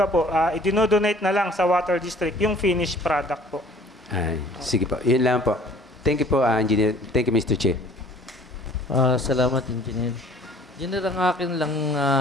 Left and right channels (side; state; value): both; normal; correlation 0.53